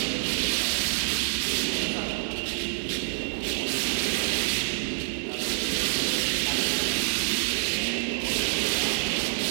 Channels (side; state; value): left; silent; digital silence